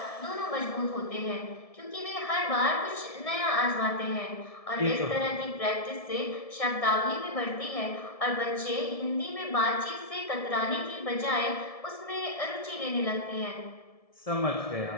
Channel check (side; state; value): right; late; 1.7 ms